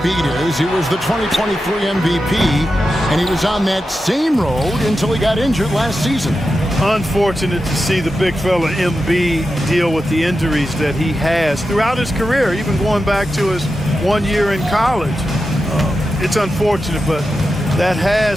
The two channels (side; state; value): both; normal; correlation 0.90